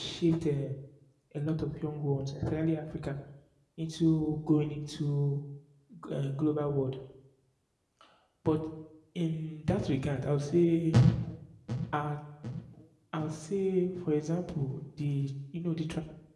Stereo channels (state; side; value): identical; both; correlation 1.00